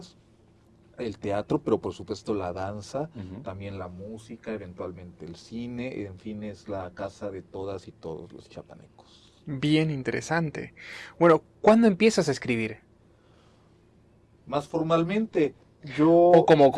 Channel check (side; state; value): both; identical; correlation 1.00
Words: el teatro, pero por supuesto la danza, también la música, eventualmente el cine, en fin, es la casa de todas y todos los chiapanecos. Bien interesante. Bueno, ¿cuándo empiezas a escribir? Más formalmente, O como